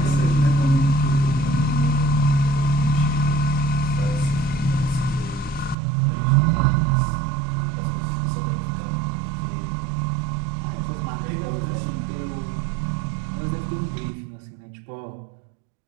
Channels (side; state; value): left; drops out; at 5.8 s